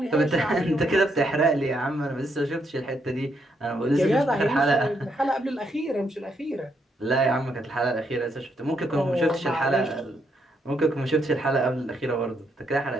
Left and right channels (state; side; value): normal; both; correlation 0.76